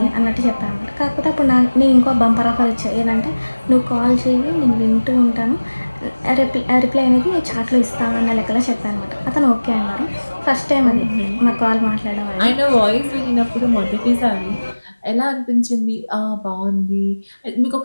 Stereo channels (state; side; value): inverted; both; correlation -1.00